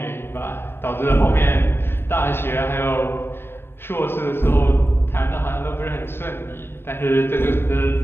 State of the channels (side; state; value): right; late; 0.11 ms